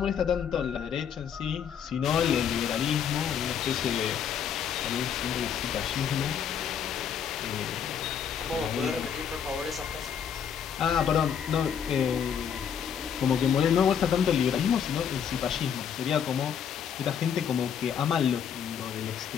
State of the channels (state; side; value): quieter; right; 8.0 dB